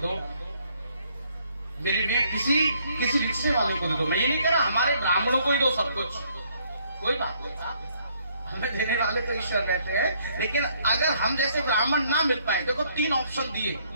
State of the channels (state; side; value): inverted; both; correlation -0.67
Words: मेरे लिए किसी रिक्शे वाले को दे दो। मैं ये नहीं कह रहा हमारे ब्राह्मणों को ही दो सब कुछ, कोई बात नहीं, हमें देने वाले तो ईश्वर बैठे हैं। लेकिन अगर हम जैसे ब्राह्मण ना मिल पाए, देखो 3 ऑप्शन दिए,